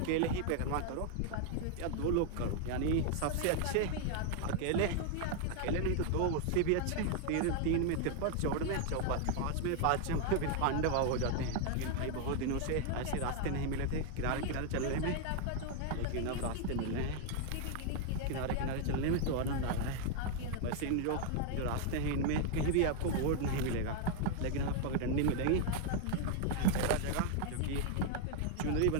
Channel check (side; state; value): both; different; correlation 0.00